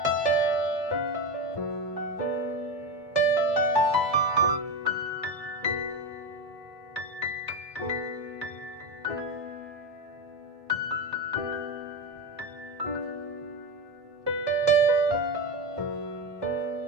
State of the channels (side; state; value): both; normal; correlation 0.17